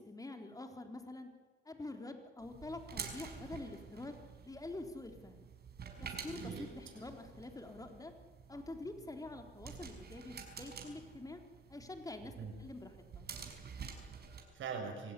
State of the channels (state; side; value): normal; both; correlation 0.54